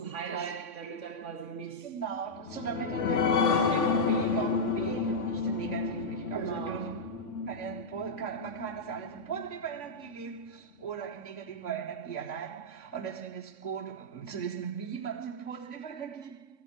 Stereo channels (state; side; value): late; right; 3.5 ms